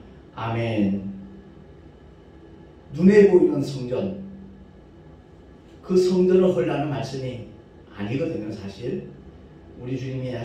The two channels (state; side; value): identical; both; correlation 1.00